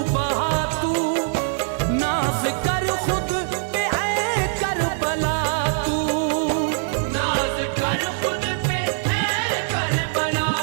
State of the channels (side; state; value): left; silent; digital silence